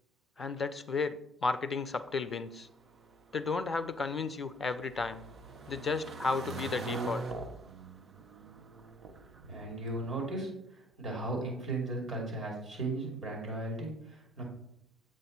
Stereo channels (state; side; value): normal; both; correlation 0.59